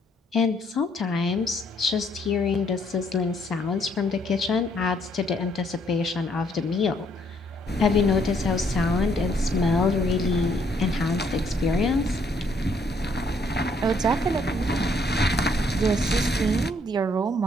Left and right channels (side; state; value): both; normal; correlation 0.68